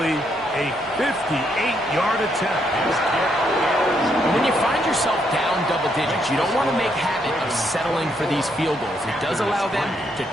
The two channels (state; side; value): normal; both; correlation 0.75